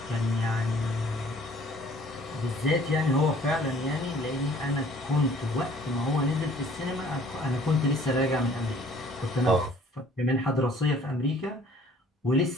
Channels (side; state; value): both; normal; correlation 0.55